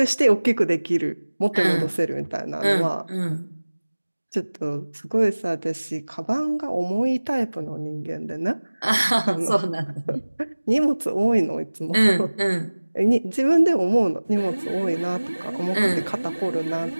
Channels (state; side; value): inverted; both; correlation -1.00